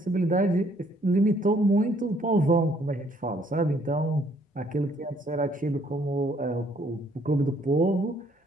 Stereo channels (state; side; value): normal; both; correlation 0.65